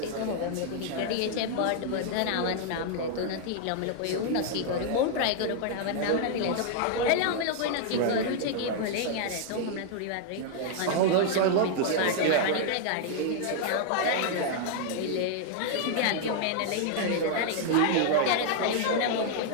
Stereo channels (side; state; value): both; different; correlation -0.01